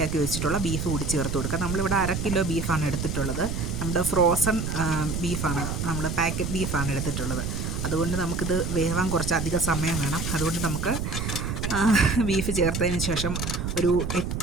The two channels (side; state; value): right; noise; rumble, 3 dB below the sound